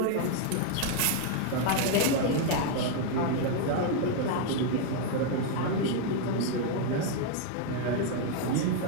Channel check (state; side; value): different; both; correlation 0.00